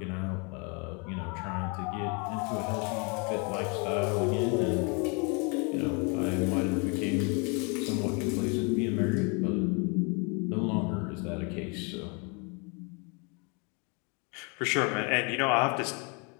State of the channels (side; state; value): right; quieter; 32.9 dB